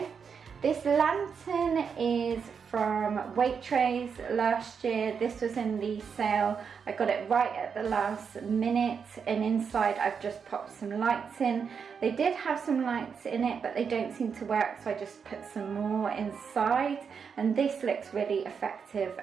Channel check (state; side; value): quieter; left; 6.4 dB